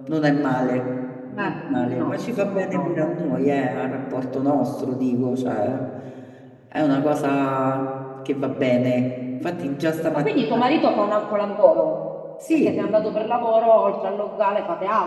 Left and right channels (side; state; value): both; identical; correlation 1.00